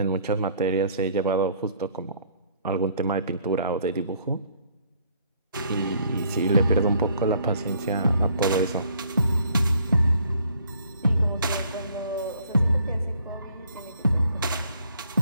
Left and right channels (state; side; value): inverted; both; correlation -0.63